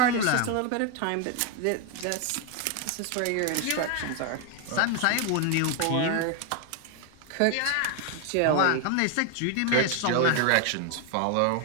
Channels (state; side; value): different; both; correlation 0.00